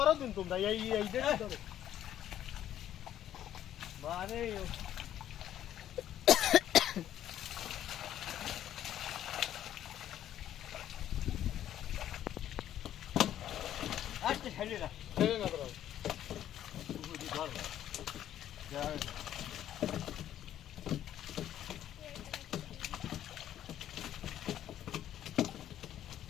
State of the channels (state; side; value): quieter; right; 11.4 dB